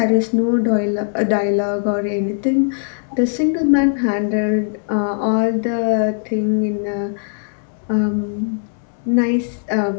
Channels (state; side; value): silent; right; 66 dB below the other